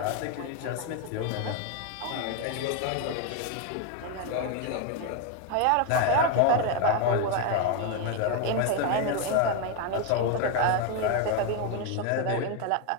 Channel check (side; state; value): both; different; correlation 0.01